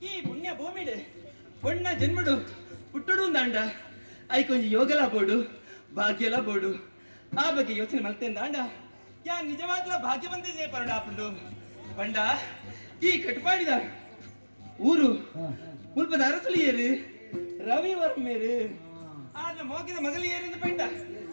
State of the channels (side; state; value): both; inverted; correlation -1.00